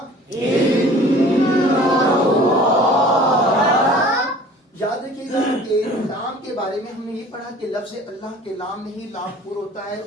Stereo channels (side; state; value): both; normal; correlation 0.47